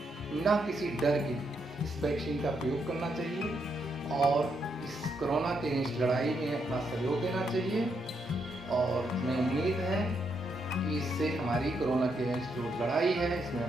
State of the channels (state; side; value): normal; both; correlation 0.78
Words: बिना किसी डर के इस वैक्सीन का प्रयोग करना चाहिए और इस कोरोना के इस लड़ाई में अपना सहयोग देना चाहिए। और हमें उम्मीद है कि इससे हमारी कोरोना के जो लड़ाई है इसमें